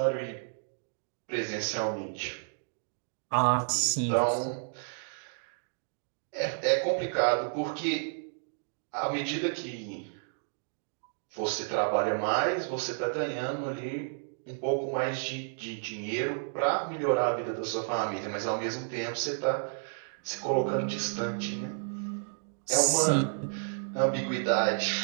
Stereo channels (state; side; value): silent; left; digital silence